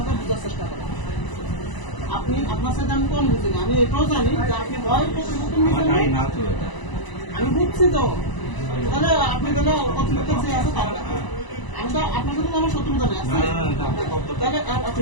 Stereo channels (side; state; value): right; late; 1.0 ms